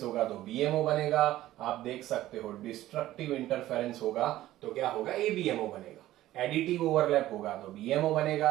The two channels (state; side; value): quieter; left; 14.7 dB